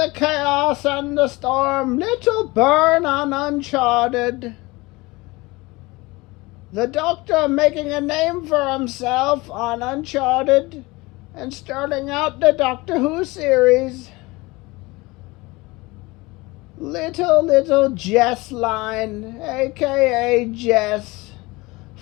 chaos and the storm, little burn on Uncharted. The doctor making a name for himself on Uncharted and starting out the Doctor Who series. Little Jess Line, aka Jess,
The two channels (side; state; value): right; quieter; 22.7 dB